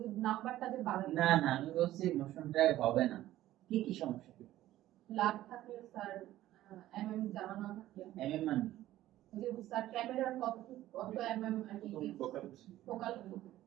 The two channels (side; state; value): left; quieter; 14.4 dB